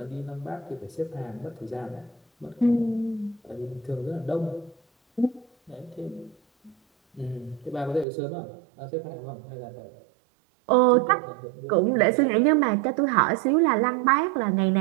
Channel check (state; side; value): drops out; left; at 8.1 s